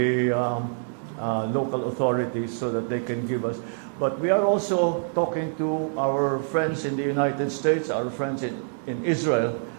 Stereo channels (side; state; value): left; silent; digital silence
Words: local authorities so that they can give us. But we are also talking to our friends in the United States, our friends in Israel,